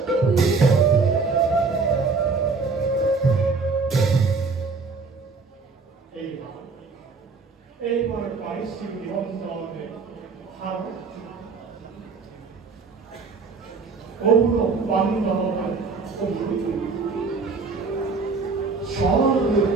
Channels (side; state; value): left; quieter; 4.5 dB